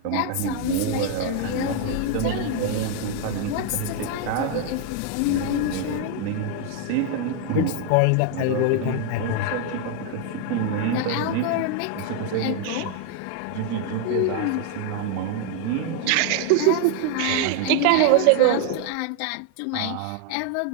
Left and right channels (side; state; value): both; different; correlation 0.01